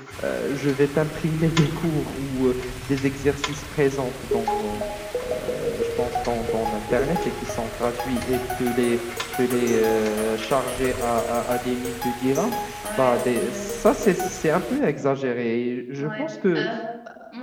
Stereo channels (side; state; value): both; identical; correlation 1.00